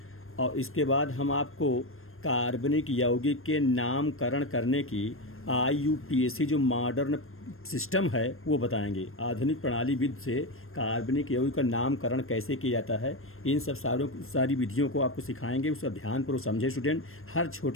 और इसके बाद हम आपको कार्बनिक यौगिक के नामकरण करने की IUPAC जो मॉडर्न सिस्टम है वो बताएंगे। आधुनिक प्रणाली विधि से कार्बनिक यौगिक का नामकरण कैसे किया जाता है, इन सब सारी विधियों को आपको सिखाएंगे। उसका ध्यानपूर्वक समझे स्टूडेंट, हर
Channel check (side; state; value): right; late; 0.61 ms